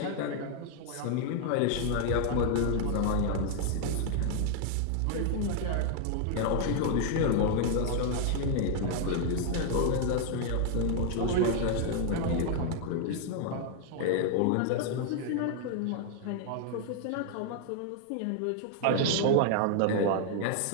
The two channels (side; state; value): both; different; correlation 0.00